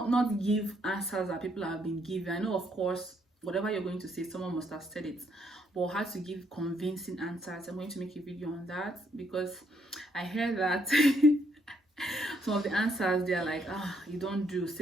give answers that people have been given. I know, of course, whatever you're going to say, someone must have said it, but how to give convincing answers, I'm going to make a video on that, because I heard that some of the answers, they're like, you don't do,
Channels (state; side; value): normal; both; correlation 0.72